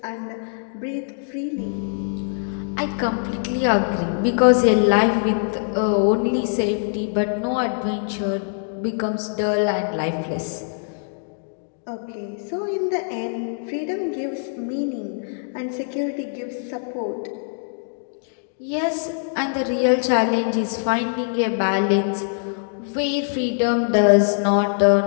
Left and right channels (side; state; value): right; silent; digital silence